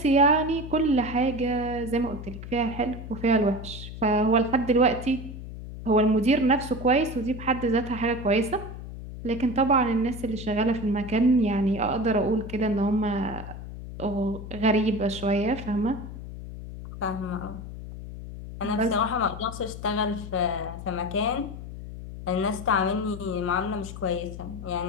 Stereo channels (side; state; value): left; noise; hum, 11 dB below the sound